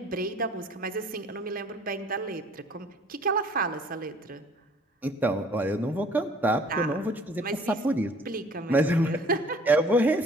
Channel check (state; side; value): normal; both; correlation 0.54